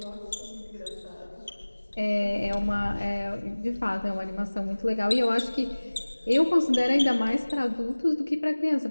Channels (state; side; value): inverted; both; correlation -1.00